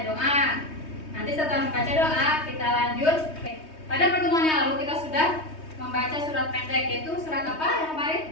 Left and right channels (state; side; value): late; right; 3.2 ms